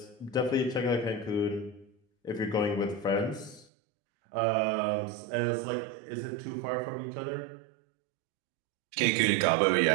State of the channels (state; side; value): drops out; left; at 3.7 s